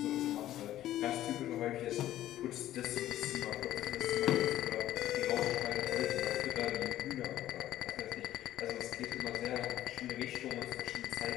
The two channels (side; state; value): right; quieter; 13.3 dB